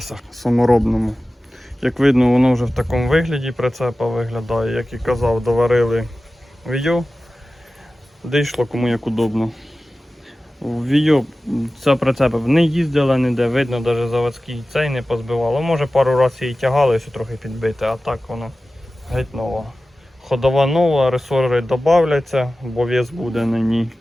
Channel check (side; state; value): both; normal; correlation 0.95